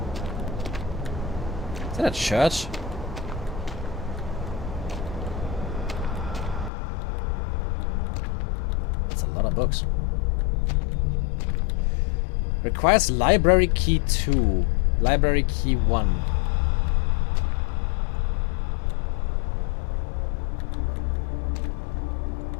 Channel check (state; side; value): drops out; right; at 6.7 s